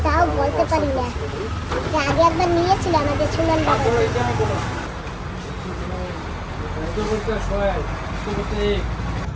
তাও বলতে পারি না। যে আগে একবার নিয়েছিল আমাদের সুমন বাবা। এটা আমি বলো। এটা বলতে হয়, এটা বলতে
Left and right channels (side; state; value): both; identical; correlation 1.00